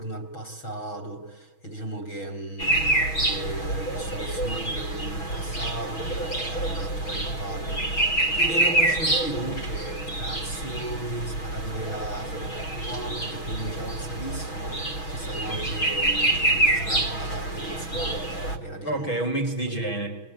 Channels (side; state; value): right; late; 6.2 ms